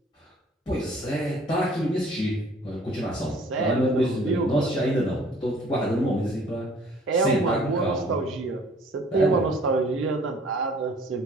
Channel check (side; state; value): both; normal; correlation 0.55